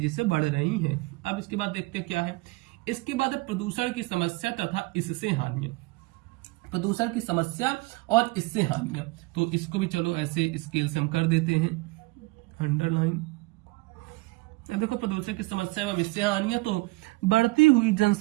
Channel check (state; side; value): quieter; left; 23.3 dB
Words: से बढ़ रही हैं। अब इसके बाद देखते हैं क्या है। इसके बाद है प्रदूषण की समस्या तथा इससे हानियां। प्रदूषण की समस्या और इससे हानियां, तो इसको भी चलो ऐसे स्केल से हम कर देते हैं अंडरलाइन। देखो प्रदूषण की समस्या एवं इससे हानियां, तो बढ़ती हुई